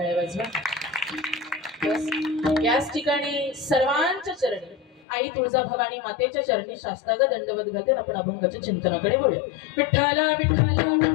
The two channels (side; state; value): right; drops out; at 5.1 s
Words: वाजवा. याच ठिकाणी सर्वांच्या चरणी आई तुळजाभवानी मातेच्या चरणी शास्त्रांग दंडवत घालते. आपण अभंगाच्या चिंतनाकडे वळूया. विठ्ठला विठ्ठला